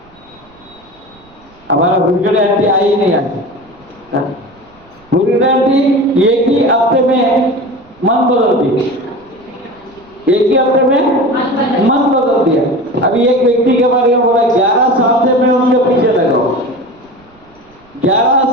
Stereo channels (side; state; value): right; noise; rumble, 30 dB below the sound